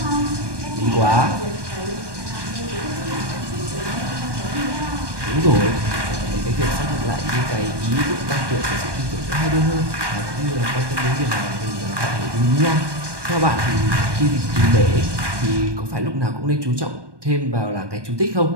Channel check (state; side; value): late; left; 1.2 ms